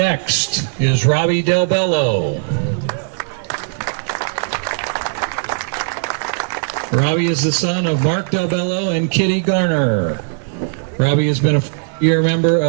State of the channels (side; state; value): left; silent; digital silence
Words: is Robbie Del Bello. Robbie is the son of Mark Del Bello and Kitty Garner. Robbie has been a year member